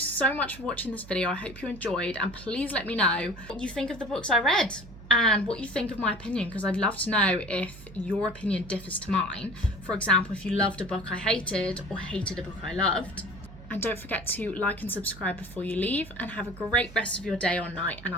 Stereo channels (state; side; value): noise; right; hum, 17 dB below the sound